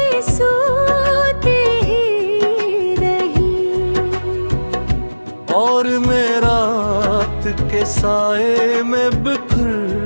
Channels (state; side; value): inverted; both; correlation -1.00